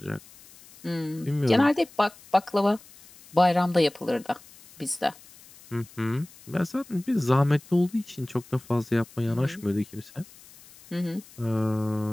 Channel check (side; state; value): left; noise; hiss, 23 dB below the sound